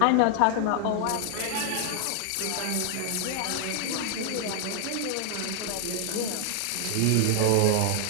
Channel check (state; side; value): different; both; correlation 0.00